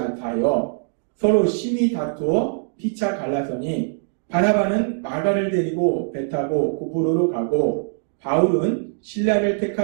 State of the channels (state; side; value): silent; left; digital silence